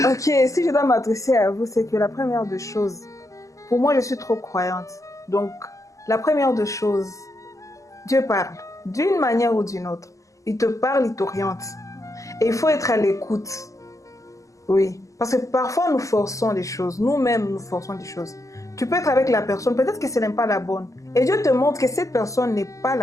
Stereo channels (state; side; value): late; right; 0.16 ms